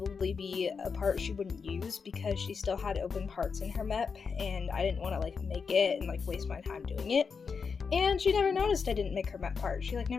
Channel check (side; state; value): right; quieter; 5.6 dB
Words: be a part she wouldn't use because she still had open parts in her map, and I didn't want to make it and waste my time doing it. And she never noticed I didn't make her map part. She